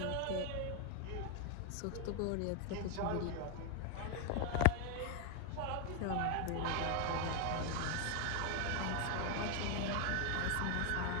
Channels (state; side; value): different; both; correlation 0.01